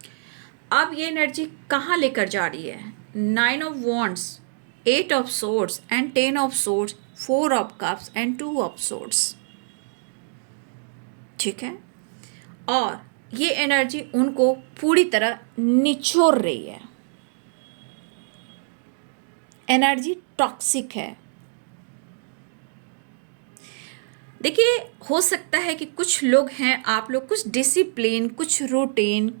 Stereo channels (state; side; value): silent; left; digital silence